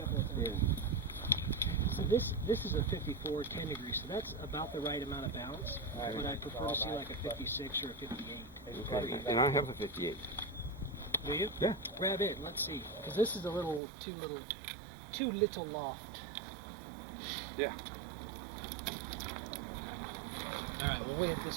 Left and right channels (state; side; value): drops out; left; at 13.8 s